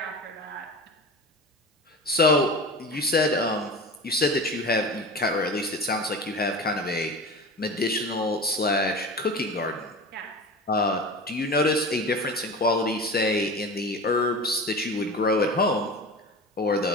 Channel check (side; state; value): both; normal; correlation 0.31